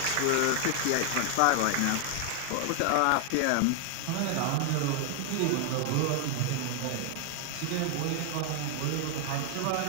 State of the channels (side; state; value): both; different; correlation 0.00